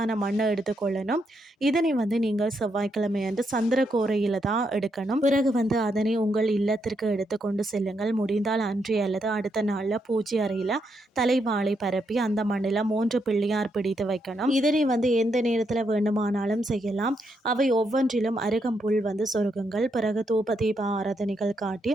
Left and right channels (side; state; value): both; normal; correlation 0.79